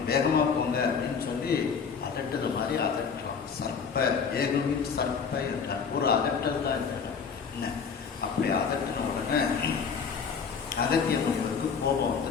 வேகமாக போங்க அப்படின்னு சொல்லி அதட்டது மாதிரி அதட்டுறான். சர்ப்ப ஏகுவின் சர்ப்ப என்றார். ஒரு அதட்டல் தான் என்ன. அப்படி அதட்டின உடனே அகத்திய முனிவருக்கு கோபம்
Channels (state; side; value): quieter; right; 6.1 dB